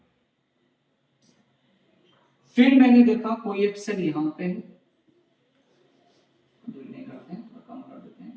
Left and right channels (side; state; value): both; identical; correlation 1.00